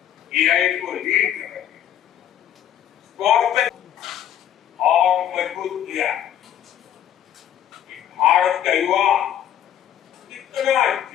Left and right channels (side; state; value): right; quieter; 10.5 dB